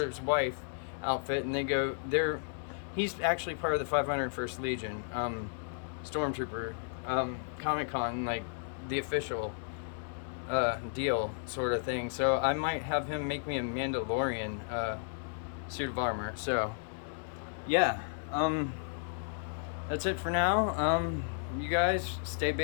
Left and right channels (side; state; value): right; silent; digital silence